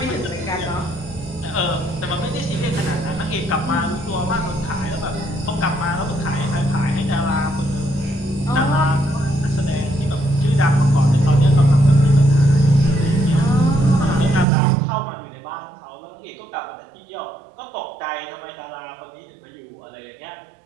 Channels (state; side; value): drops out; left; at 14.5 s